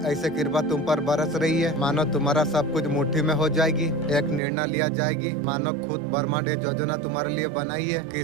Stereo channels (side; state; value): left; drops out; at 4.4 s